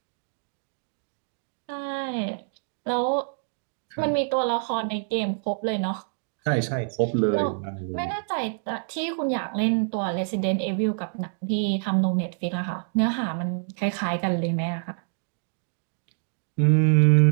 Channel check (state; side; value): silent; left; digital silence